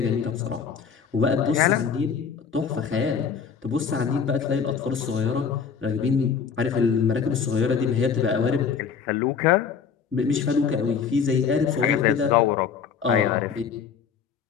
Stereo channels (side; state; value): right; quieter; 6.6 dB